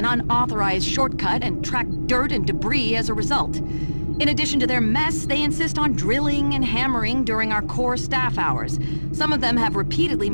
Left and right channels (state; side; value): inverted; both; correlation -1.00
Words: unauthorized shortcut and track dirt and debris as a result. In addition to their mess, they insist on drilling and hammering during our core staff hours. Some of them have repeatedly